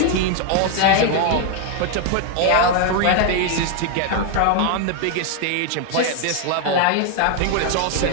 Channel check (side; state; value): both; different; correlation 0.00